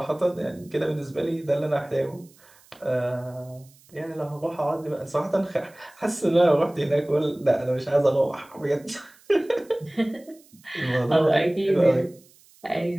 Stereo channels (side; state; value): right; noise; hiss, 28 dB below the sound